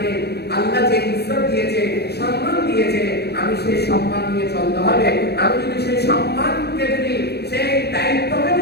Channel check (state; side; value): late; right; 0.48 ms